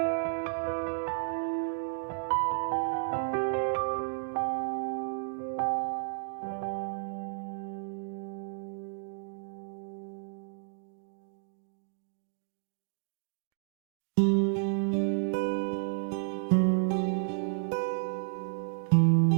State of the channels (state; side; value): silent; left; digital silence